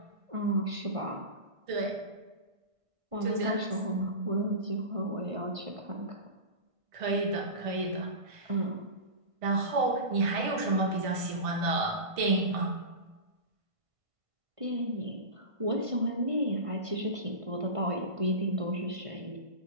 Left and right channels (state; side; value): late; left; 1.5 ms